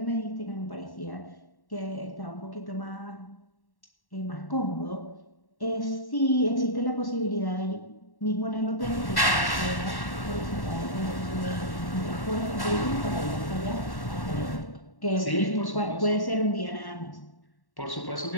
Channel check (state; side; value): late; right; 1.1 ms